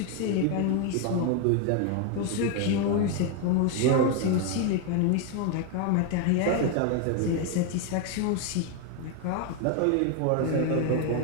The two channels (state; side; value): different; both; correlation 0.01